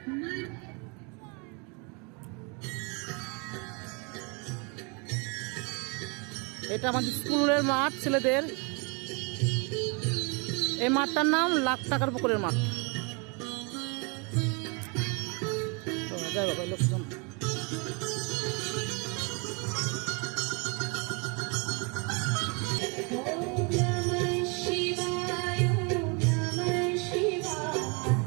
এটা আমাদের স্কুলের মাঠ, ছেলেদের। এই মাঠটার নাম লাখ টাকার পুকুরের মাঠ। যাই বাবা, লোকজন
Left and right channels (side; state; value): left; quieter; 32.4 dB